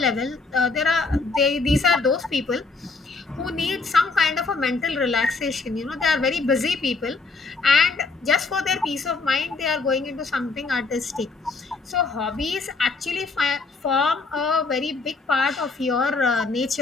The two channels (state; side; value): quieter; right; 4.1 dB